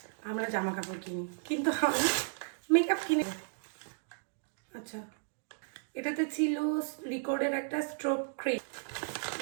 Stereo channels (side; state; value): left; silent; digital silence